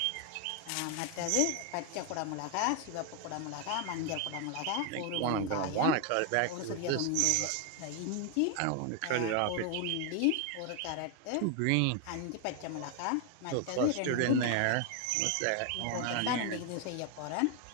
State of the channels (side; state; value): both; different; correlation 0.01